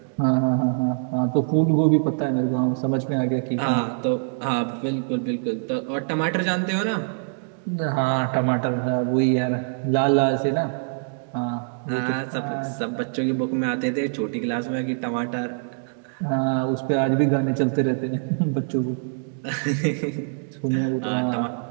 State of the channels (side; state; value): left; silent; digital silence